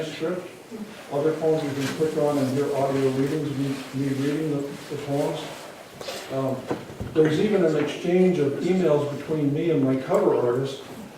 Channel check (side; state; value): both; identical; correlation 1.00